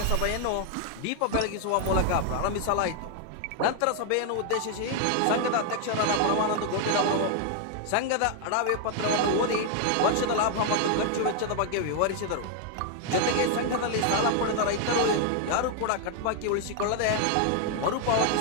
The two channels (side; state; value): both; different; correlation 0.00